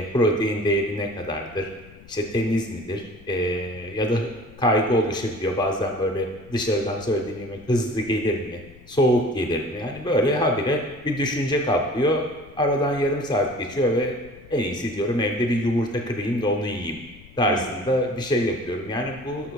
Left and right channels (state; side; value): noise; left; rumble, 22 dB below the sound